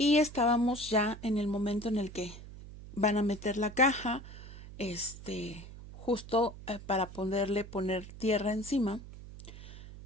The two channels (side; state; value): right; noise; hum, 14 dB below the sound